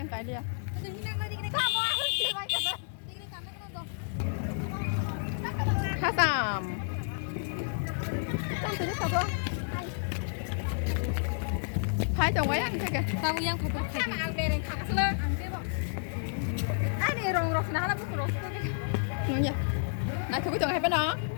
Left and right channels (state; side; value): silent; right; digital silence